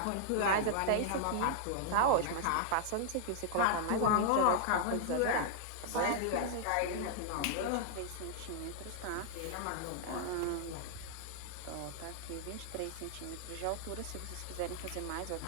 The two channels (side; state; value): both; different; correlation -0.01